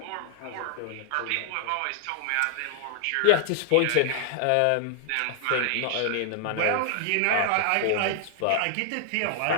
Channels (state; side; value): different; both; correlation 0.00